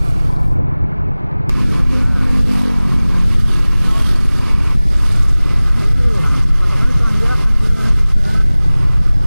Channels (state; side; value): inverted; both; correlation -0.99